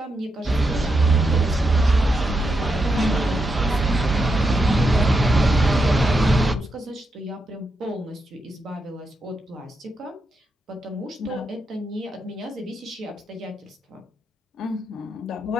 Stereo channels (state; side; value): normal; both; correlation 0.84